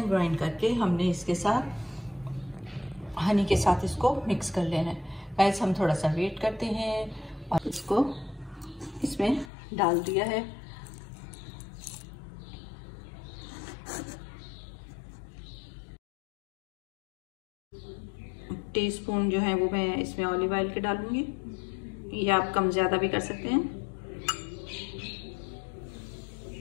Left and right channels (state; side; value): drops out; right; at 9.5 s